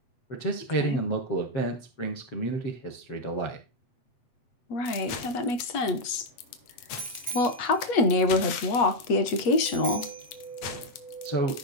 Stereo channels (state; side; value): late; right; 8.3 ms